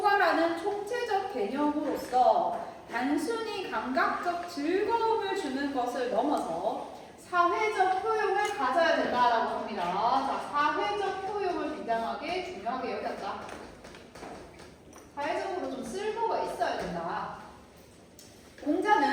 총체적 개념으로서 단순히 감각적 즐거움을 주는 것을 넘어서 사회적 효용을 가져야 된다라고 합니다. 자, 사회적 효용을 굉장하게 중요하게 여겼다. 사회적으로 좀 쓸모가 있어야 된다.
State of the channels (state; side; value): identical; both; correlation 1.00